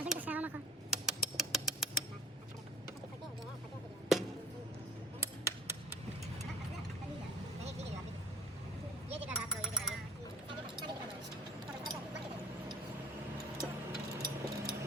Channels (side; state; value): both; normal; correlation 0.47